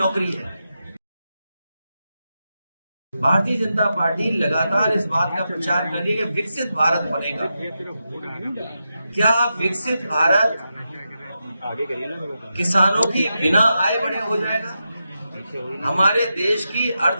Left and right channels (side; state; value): both; inverted; correlation -0.88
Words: है। भारतीय जनता पार्टी लगातार इस बात का प्रचार कर रही है कि विकसित भारत बनेगा। क्या विकसित भारत किसानों की बिना आय बढ़े हो जाएगा? हमारे देश की